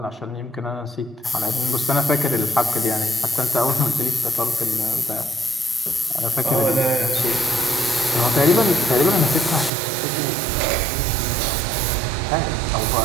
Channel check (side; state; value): left; drops out; at 9.7 s